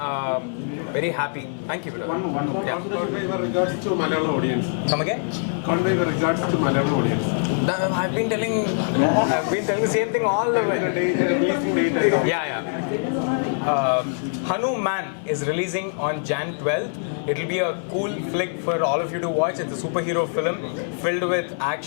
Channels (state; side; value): silent; right; digital silence